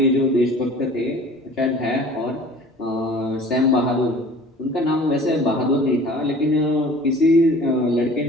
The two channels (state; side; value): normal; both; correlation 0.46